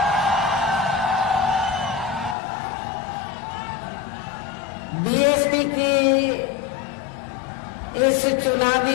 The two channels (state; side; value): drops out; right; at 2.4 s